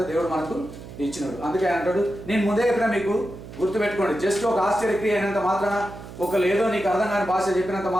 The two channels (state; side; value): noise; right; hum, 14 dB below the sound